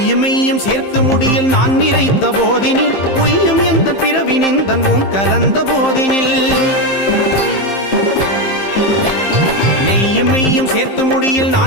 மெய்யும் சேர்த்து முடியில் நான் நிறைத்த போதினில் பொய்யும் எந்த பிறவி நிந்தன் உன் கலந்த போதினில் நெய்யும் மெய்யும் சேர்த்து முடியில்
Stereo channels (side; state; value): right; late; 15 ms